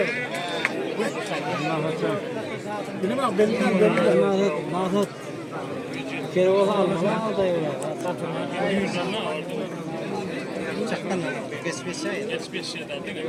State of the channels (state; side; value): identical; both; correlation 1.00